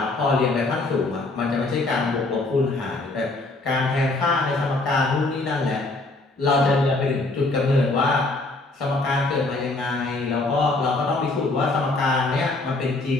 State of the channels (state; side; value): quieter; right; 3.1 dB